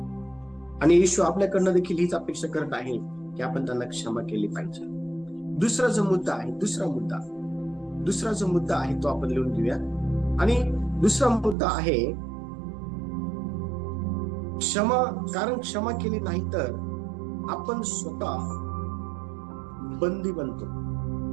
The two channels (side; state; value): left; drops out; at 11.6 s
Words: आणि येशू आपल्याकडनं देखील हीच अपेक्षा करत आहे की आपण त्यांना क्षमा केली पाहिजे. दुसरा जो मुद्दा आहे तो आपण लिहून घेऊया. आणि दुसरा मुद्दा आहे क्षमा. कारण क्षमा केली नाही तर आपण स्वतः बंदी बनतो.